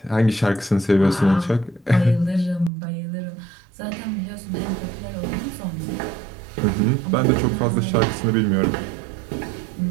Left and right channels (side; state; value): left; drops out; at 2.7 s